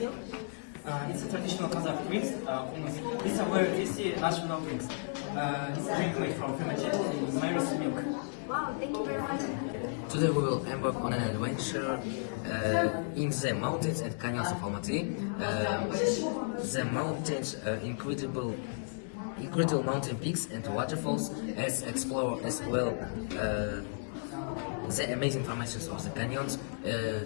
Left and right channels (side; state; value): right; silent; digital silence